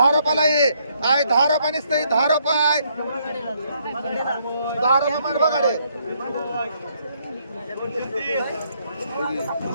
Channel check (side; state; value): both; inverted; correlation -0.71